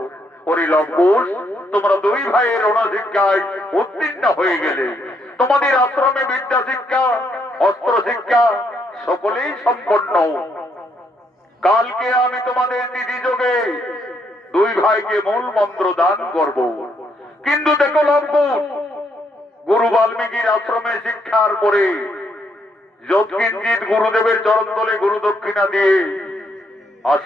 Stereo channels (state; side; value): normal; both; correlation 0.74